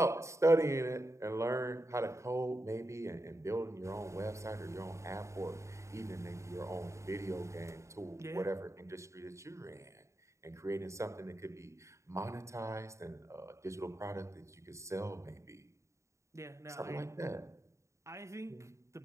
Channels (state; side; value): late; left; 0.14 ms